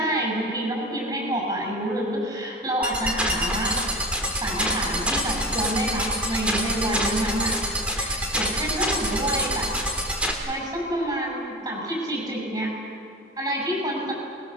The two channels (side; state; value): both; normal; correlation 0.30